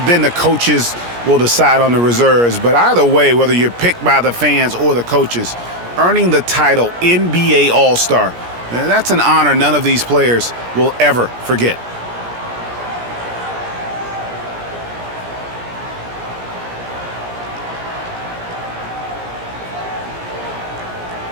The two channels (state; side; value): late; left; 17 ms